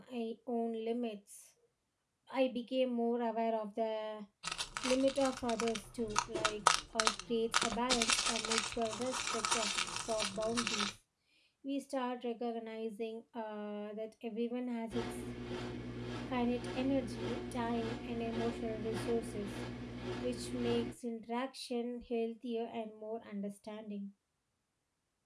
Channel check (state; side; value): identical; both; correlation 1.00